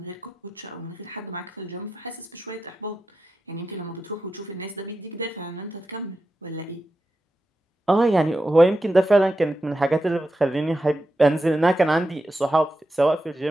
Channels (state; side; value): normal; both; correlation 0.89